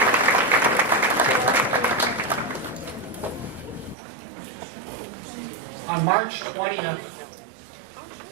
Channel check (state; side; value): drops out; left; at 4.0 s